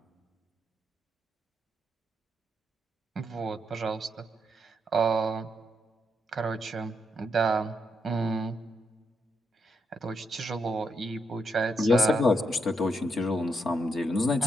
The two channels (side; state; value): both; normal; correlation 0.80